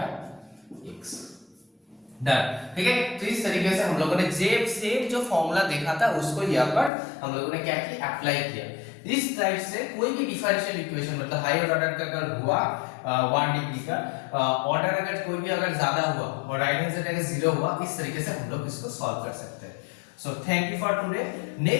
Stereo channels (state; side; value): drops out; right; at 6.9 s